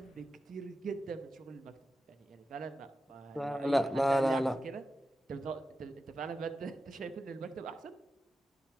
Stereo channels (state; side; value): normal; both; correlation 0.91